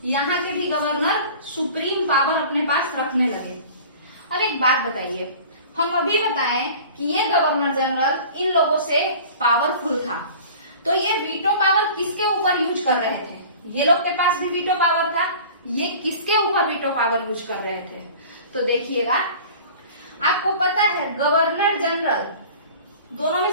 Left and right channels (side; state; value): both; inverted; correlation -0.42